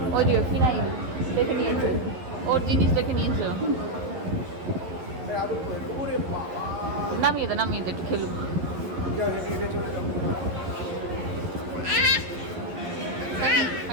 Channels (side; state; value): left; late; 11 ms